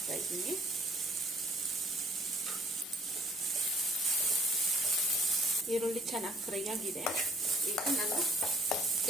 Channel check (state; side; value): normal; both; correlation 0.59